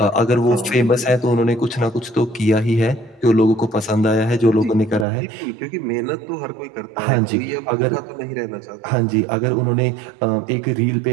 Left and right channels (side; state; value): left; drops out; at 5.1 s